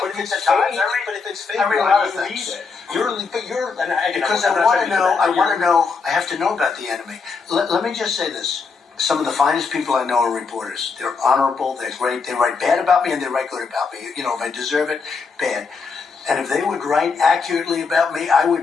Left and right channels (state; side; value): quieter; right; 5.0 dB